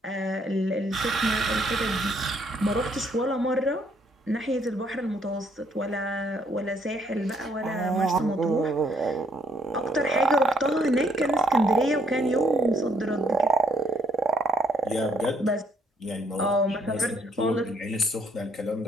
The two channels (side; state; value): both; normal; correlation 0.67